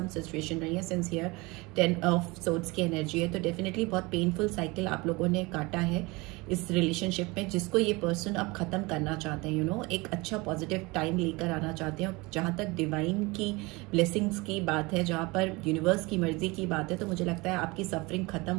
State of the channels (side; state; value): left; quieter; 24.4 dB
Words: सिचुएशन रही है, सिंस हियर 10 ऑफ सोर्ड्स की एनर्जी है, तो डेफिनेटली बहुत पेनफुल साइकिल आप लोगों ने काटा है इस रिलेशनशिप में, जिसको ये पर्सन अब खत्म करना चाहते हैं. एक अच्छा पॉजिटिव टाइम लेकर आना चाहते हैं. जहाँ तक डिवाइन की ब्लेसिंग्स की बात है, जहाँ पर यूनिवर्स की मर्जी की बात है, तो मुझे लगता है आपकी सफरिंग खत्म